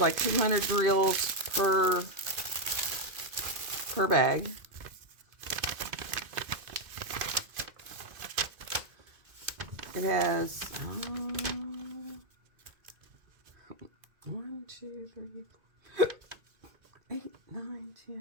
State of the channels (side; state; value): left; late; 2.5 ms